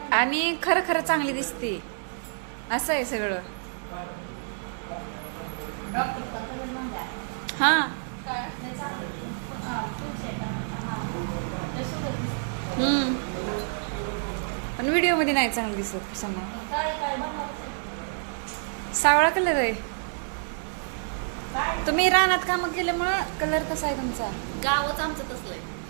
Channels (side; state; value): left; silent; digital silence